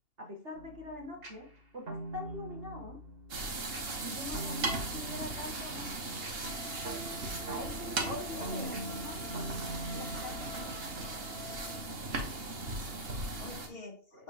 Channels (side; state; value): left; late; 2.8 ms